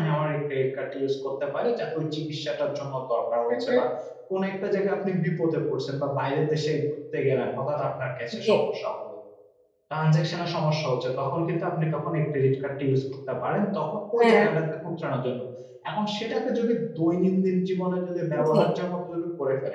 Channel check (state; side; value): identical; both; correlation 1.00